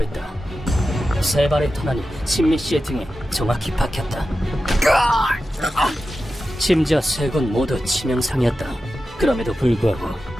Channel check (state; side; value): normal; both; correlation 0.92